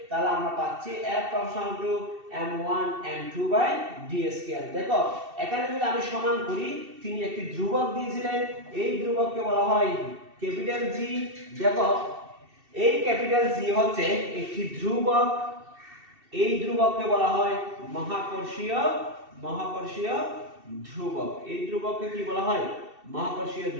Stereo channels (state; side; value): late; left; 2.7 ms